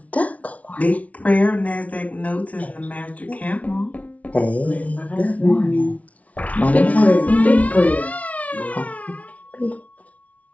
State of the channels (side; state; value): right; late; 0.068 ms